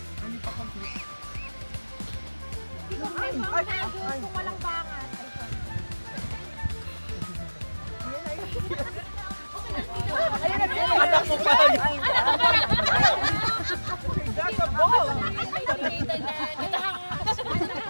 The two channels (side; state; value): both; inverted; correlation -1.00